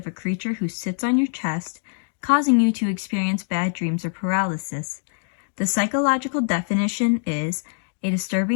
a creature who sits on your chest, causing you to experience bad dreams or paralysis. The psychological definition is a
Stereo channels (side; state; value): right; silent; digital silence